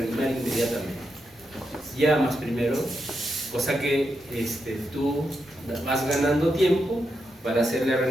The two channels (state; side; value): normal; both; correlation 0.85